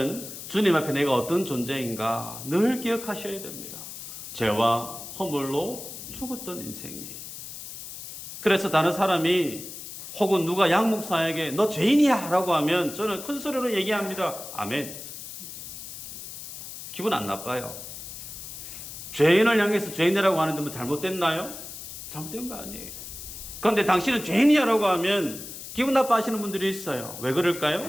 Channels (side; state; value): left; noise; hiss, 11 dB below the sound